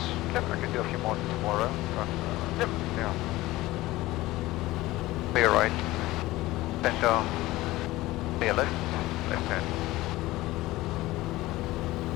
Yep. I can do a few more tomorrow, but Yep. yeah. Clear right. Center. Clear left. Left hand.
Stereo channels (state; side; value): quieter; right; 18.1 dB